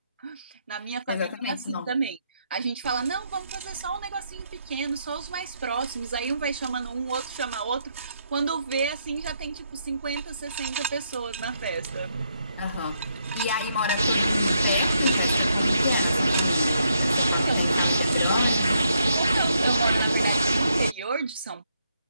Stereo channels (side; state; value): both; inverted; correlation -0.77